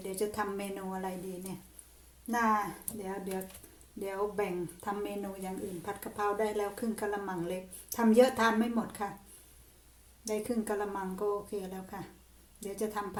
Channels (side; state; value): both; identical; correlation 1.00